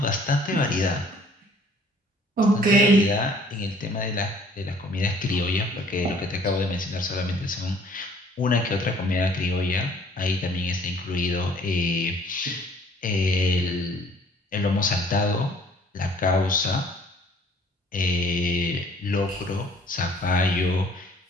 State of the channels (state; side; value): normal; both; correlation 0.56